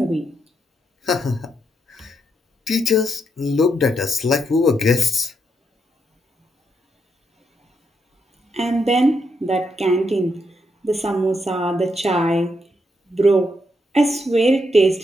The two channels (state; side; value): normal; both; correlation 0.79